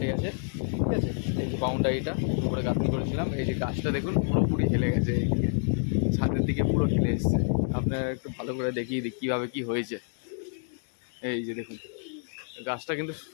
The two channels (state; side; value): silent; right; 59 dB below the other